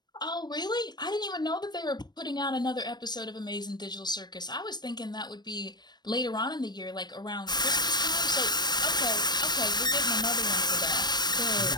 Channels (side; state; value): right; late; 0.21 ms